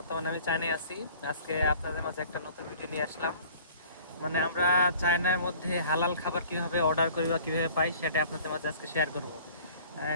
আমি চায়নায় আছি। আজকে আপনাদের মাঝে একটা নতুন ভিডিও নিয়ে আসলাম। মানে আমরা চায়নার মধ্যে হালাল খাবার কিভাবে অর্ডার করি বা কীভাবে পাই সেটা আপনাদের মাঝে আজকে শেয়ার করব।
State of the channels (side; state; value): both; inverted; correlation -0.50